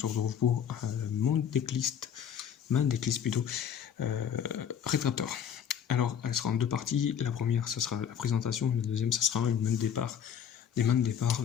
retrouve pour ma decklist plutôt, Rétracteur. Alors elle sera en deux parties. La première ça sera la présentation, la deuxième ça sera une main de départ, des mains de départ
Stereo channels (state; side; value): quieter; right; 8.5 dB